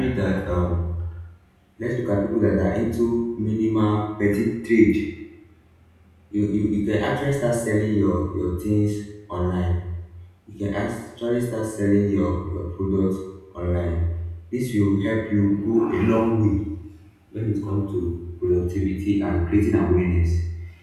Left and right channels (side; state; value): both; identical; correlation 1.00